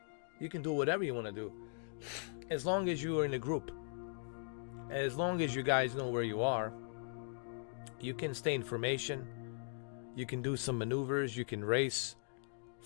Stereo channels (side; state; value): right; silent; digital silence